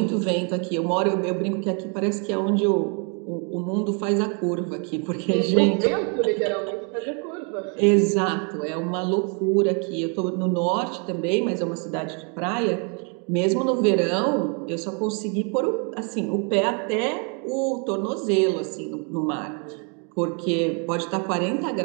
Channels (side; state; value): left; quieter; 37.5 dB